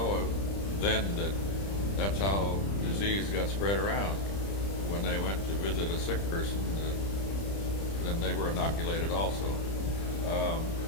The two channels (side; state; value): right; late; 30 ms